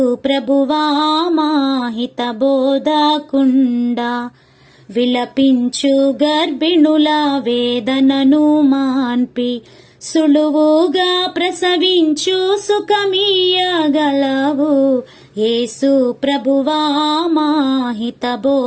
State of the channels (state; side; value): identical; both; correlation 1.00